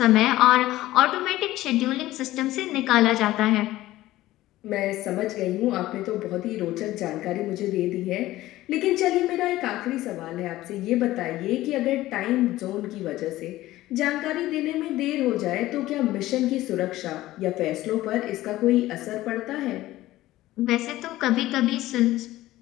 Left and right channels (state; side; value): quieter; right; 16.1 dB